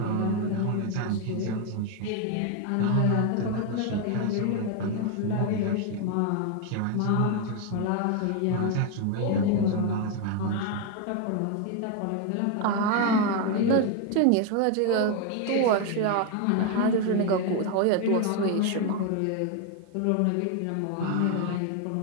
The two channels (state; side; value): different; both; correlation 0.01